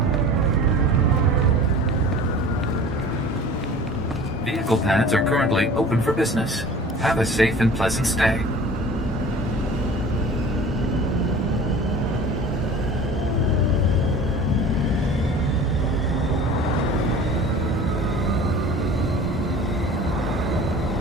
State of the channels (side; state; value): both; normal; correlation 0.42